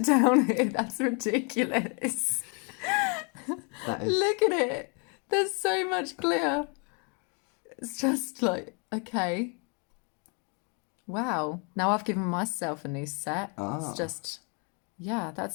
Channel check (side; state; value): right; quieter; 35.9 dB